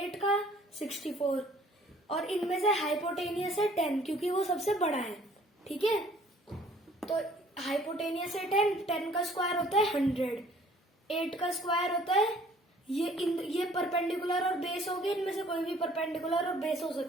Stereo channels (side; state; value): both; normal; correlation 0.56